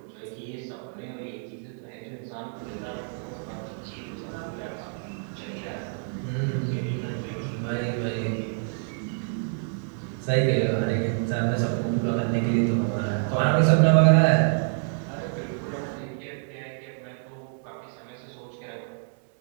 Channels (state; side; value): silent; left; 60 dB below the other